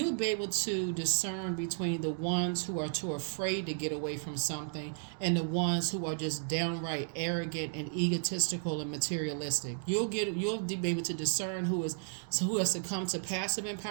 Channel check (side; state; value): left; silent; digital silence